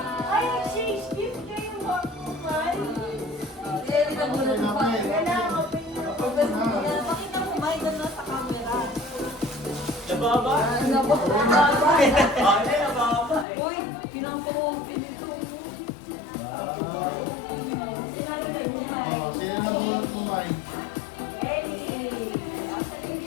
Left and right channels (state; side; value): drops out; right; at 13.5 s